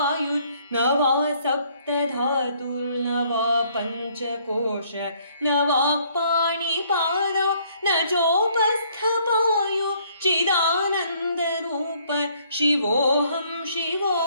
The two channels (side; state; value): both; inverted; correlation -0.64